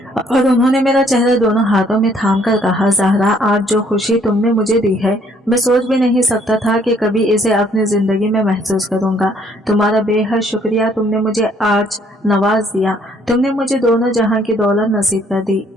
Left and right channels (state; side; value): normal; both; correlation 0.64